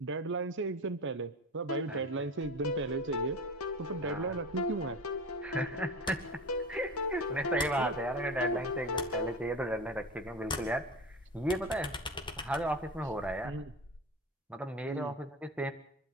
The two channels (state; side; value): normal; both; correlation 0.29